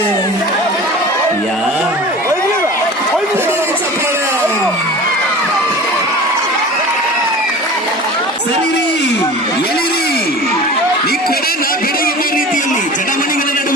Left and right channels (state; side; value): normal; both; correlation 0.38